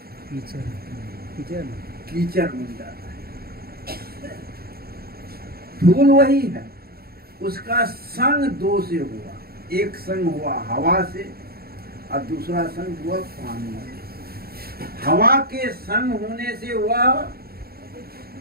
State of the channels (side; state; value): left; late; 0.45 ms